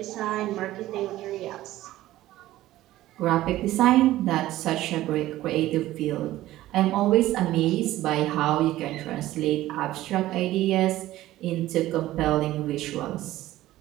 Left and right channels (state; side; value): quieter; left; 15.3 dB